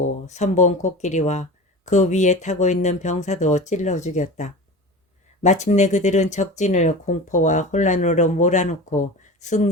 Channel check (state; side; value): normal; both; correlation 0.32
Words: 선봉 코끼리와 그 위에 타고 있는 병사도 찔러 죽였다. 마침내 그들은 적진을 공포와 혼란으로 몰아놓고